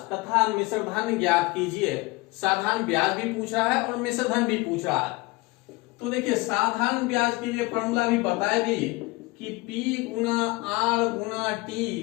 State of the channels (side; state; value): right; quieter; 23.5 dB